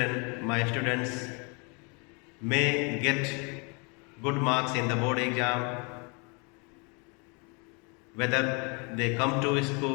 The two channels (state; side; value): quieter; right; 32.8 dB